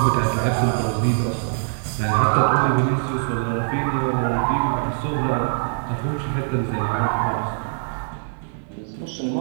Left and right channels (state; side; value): silent; left; 62 dB below the other